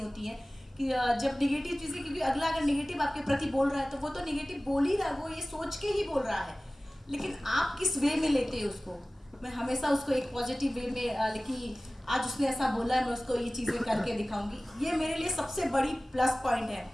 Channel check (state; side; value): normal; both; correlation 0.98